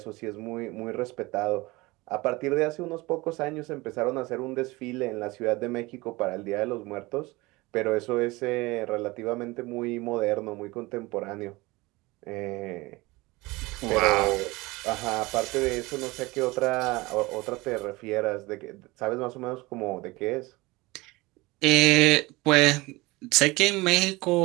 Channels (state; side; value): quieter; left; 22.2 dB